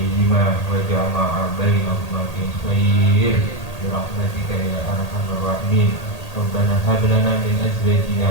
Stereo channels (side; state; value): right; late; 1.8 ms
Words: وجمع بينهما في خير برحمتك يا أرحم الراحمين. ربنا هب لنا من